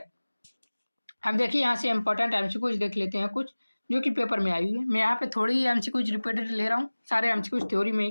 अब देखिए यहाँ से इंपॉर्टेंट एमसीक्यूज देख लेते हैं कुछ जो कि पेपर में आई हुई है। मैं यहाँ पे थोड़ी ही एमसीक्यूज रिपीटेड ले रहा हूँ, सारे एमसीक्यूज थ्योरी में ही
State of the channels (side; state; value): both; inverted; correlation -1.00